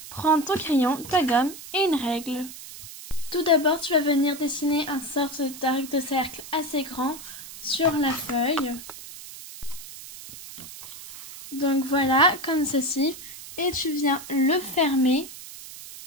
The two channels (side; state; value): right; noise; hiss, 14 dB below the sound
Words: Prends ton crayon, ta gomme et une règle. Tout d'abord tu vas venir dessiner un sorte d'arc de cercle assez grand sur la feuille. Donc voilà, comme ceci, et tu viens le fermer